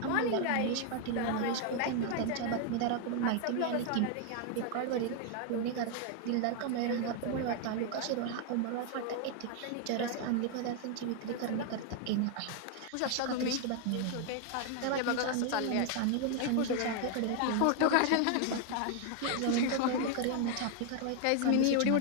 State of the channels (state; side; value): different; both; correlation 0.00